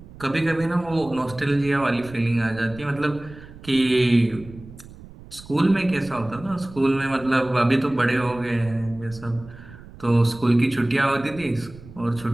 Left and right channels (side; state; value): right; noise; rumble, 18 dB below the sound